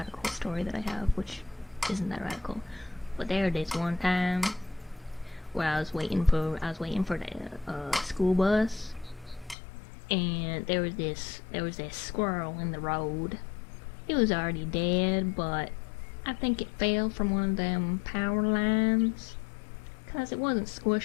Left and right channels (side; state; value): right; drops out; at 9.6 s